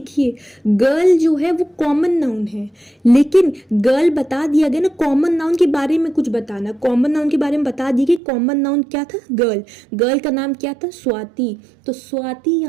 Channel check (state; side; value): drops out; left; at 8.2 s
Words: गर्ल जो है वो कॉमन नाउन है, लेकिन गर्ल बता दिया गया ना, कॉमन नाउन के बारे में कुछ बताना, कॉमन नाउन के बारे में बता दिया कि कॉमन नाउन क्या था, गर्ल, गर्ल का नाम क्या था, स्वाति, तो स्वाति